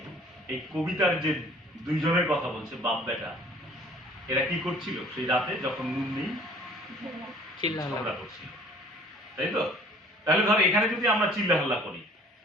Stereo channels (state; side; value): normal; both; correlation 0.53